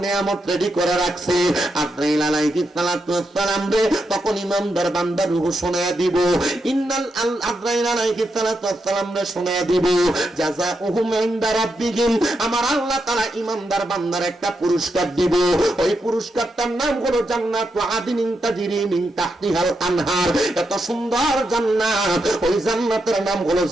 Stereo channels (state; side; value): normal; both; correlation 0.84